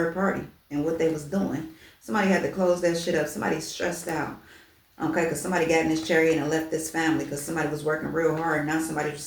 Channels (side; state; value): both; identical; correlation 1.00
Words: party and what they was doing. Somebody had to close that shit up. Somebody's stressed out. Okay, because somebody got in this chariot and left this family because somebody was working real hard and now somebody's